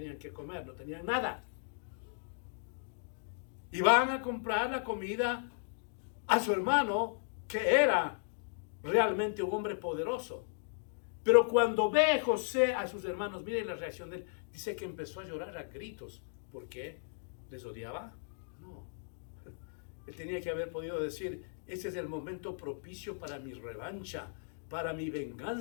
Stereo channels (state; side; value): silent; right; digital silence